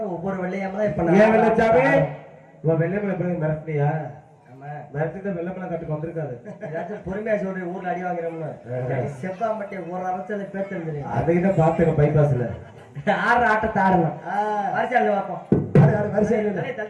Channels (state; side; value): identical; both; correlation 1.00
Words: ஒவ்வொரு வெள்ளையம்மா இப்ப ஏன் வெள்ளச்சாமி வெள்ளையம்மலை எப்படி மிரட்டியா? மிரட்டிதான் வெள்ளமலை கட்டுக்கு வந்திருக்காது. ஏதாச்சும் பொறுமையா சொல்றேன். ஊர்ல அடி வாங்குறோம்னு செவ்வாமட்டை ஒரு அரசல பேத்து அதுக்கிட்ட பாத்துக்க. பைபாஸ்ல ஆடுற ஆட்டத்தை ஆடணும். வரிசையில பார்ப்போம்.